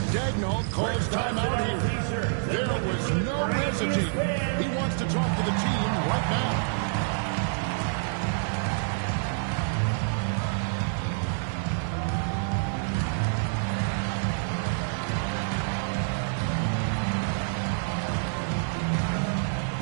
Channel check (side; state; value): left; silent; 59 dB below the other